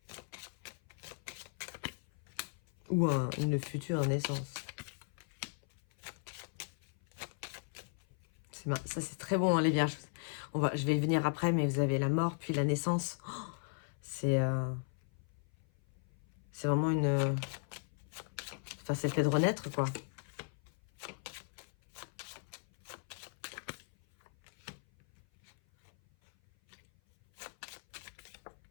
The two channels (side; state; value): right; silent; 53 dB below the other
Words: Ou une future naissance. Ça, c'est très bon, hein, les vierges. Je vais y venir après, mais vous avez la mort, puis la naissance. Oh, c'est vraiment une... Enfin, c'est le fait de renaître, quoi.